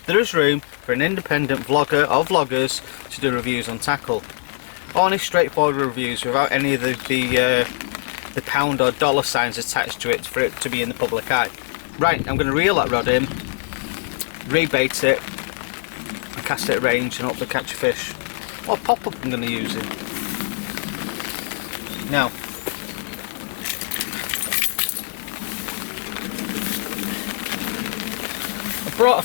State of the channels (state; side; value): silent; right; digital silence